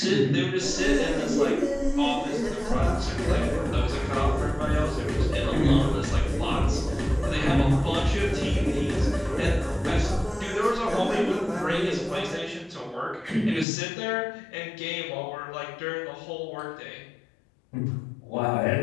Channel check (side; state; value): right; drops out; at 13.7 s